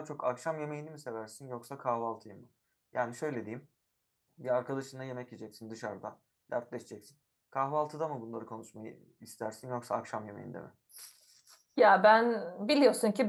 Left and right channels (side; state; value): both; identical; correlation 1.00